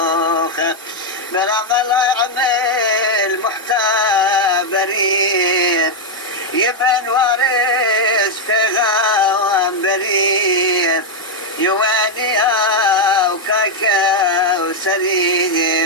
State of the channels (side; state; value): both; normal; correlation 0.00